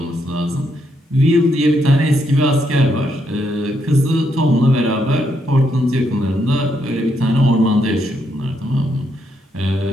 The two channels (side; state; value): both; normal; correlation 0.77